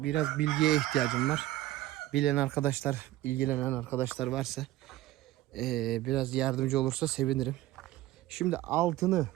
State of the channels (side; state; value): left; quieter; 15.5 dB